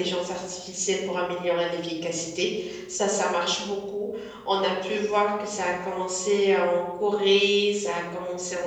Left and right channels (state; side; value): identical; both; correlation 1.00